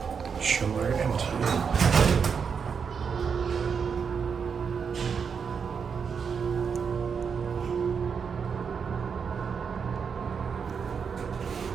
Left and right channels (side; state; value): left; quieter; 6.3 dB